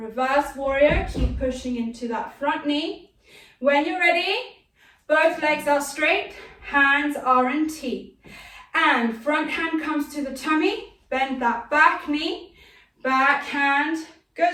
warrior, keep pushing into that front knee. When you're ready, both legs are straight, hands are in T. And front hand comes to the tummy, bend that back knee, back hand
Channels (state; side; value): identical; both; correlation 1.00